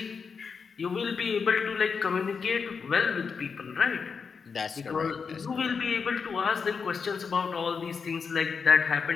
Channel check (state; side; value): quieter; right; 5.7 dB